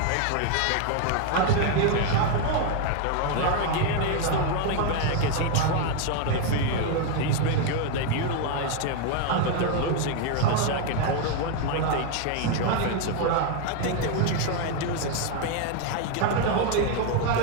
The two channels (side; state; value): both; different; correlation 0.01